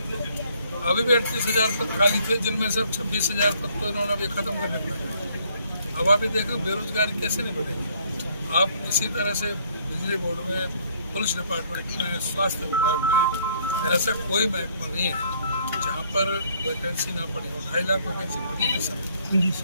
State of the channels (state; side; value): inverted; both; correlation -0.64